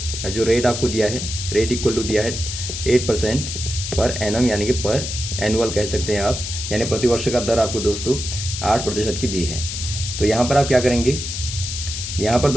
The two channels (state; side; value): noise; left; hiss, 6 dB below the sound